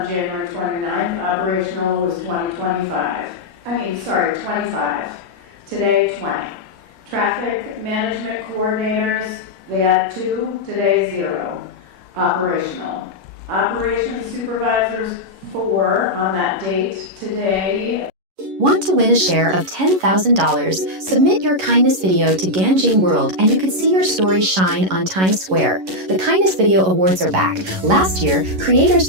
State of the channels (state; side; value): late; left; 11 ms